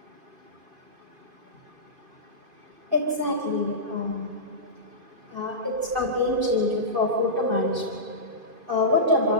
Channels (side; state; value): left; late; 2.5 ms